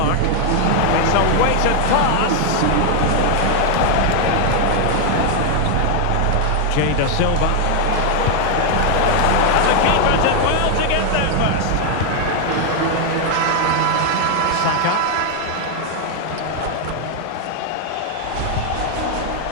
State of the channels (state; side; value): different; both; correlation 0.00